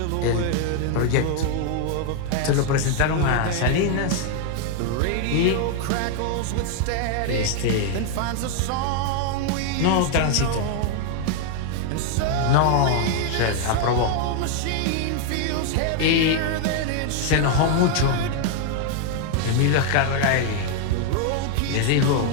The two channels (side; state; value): both; different; correlation 0.00